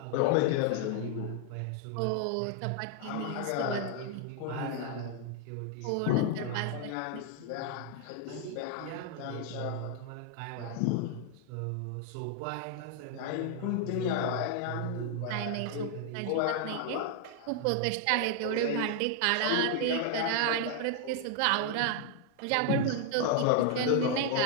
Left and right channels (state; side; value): different; both; correlation 0.00